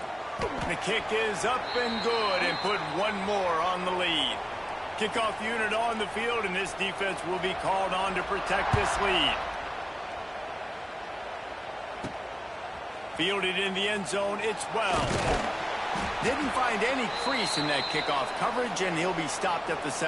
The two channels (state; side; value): identical; both; correlation 1.00